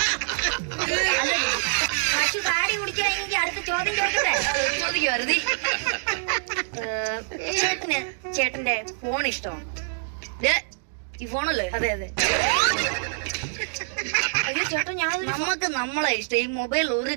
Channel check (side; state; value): left; silent; digital silence